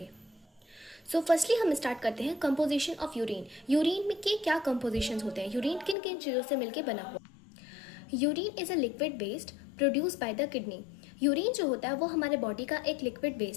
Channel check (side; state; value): right; drops out; at 6.0 s